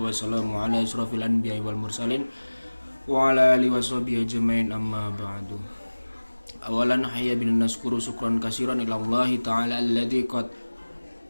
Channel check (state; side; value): inverted; both; correlation -1.00